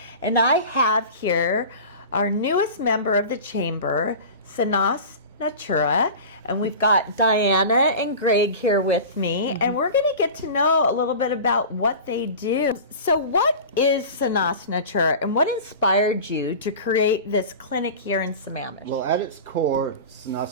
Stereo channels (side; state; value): both; inverted; correlation -0.34